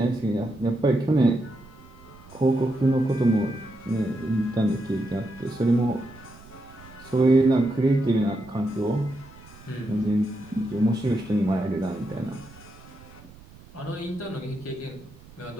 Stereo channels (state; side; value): noise; right; rumble, 22 dB below the sound